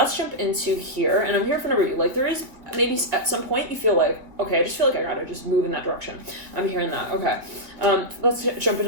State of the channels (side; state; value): left; late; 2.1 ms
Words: jump into here. And I'm here for number you. Like, there is maybe at some point you feel like, okay, I just feel like I gotta just move in that direction. I'm hearing that. Okay. Let's jump